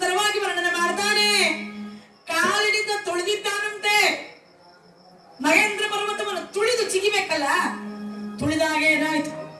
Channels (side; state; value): both; identical; correlation 1.00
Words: ವರ್ಣನೆ ಮಾಡ್ತಾನೆ. ಕಾಲಿನಿಂದ ತುಳಿದಿದ್ದಾನಂತೆ. ಮಹೇಂದ್ರ ಪರ್ವತವನ್ನು ತುಳಿದು ಚಿಗಿಬೇಕಲ್ಲ, ತುಳಿದಾಗ ಏನಾಯ್ತು?